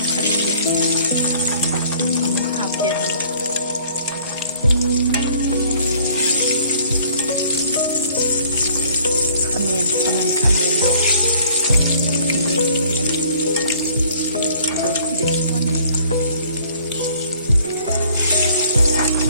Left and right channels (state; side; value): inverted; both; correlation -0.57